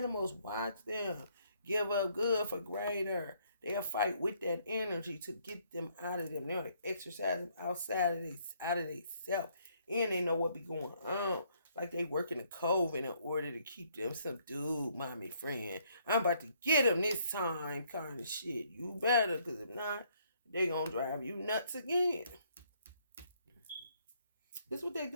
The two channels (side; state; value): both; inverted; correlation -0.68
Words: watch them. Give up good for greater. They'll fight with that energy to get them out of them. They'll exercise them outside of they self. And they know what be going on. Like they working the coven in order to keep them subdued, mommy friend. I'm about to get them this time kind of shit. You better, because if not, they gonna drive you nuts again. This is what they